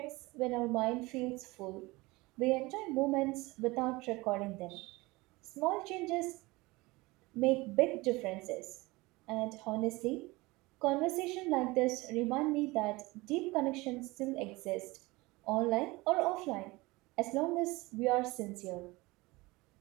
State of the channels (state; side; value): quieter; left; 22.3 dB